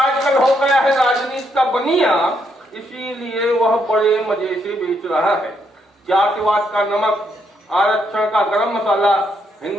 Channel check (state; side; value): normal; both; correlation 0.76